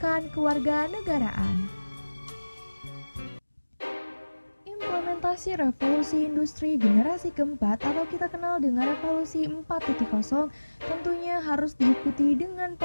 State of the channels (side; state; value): both; inverted; correlation -1.00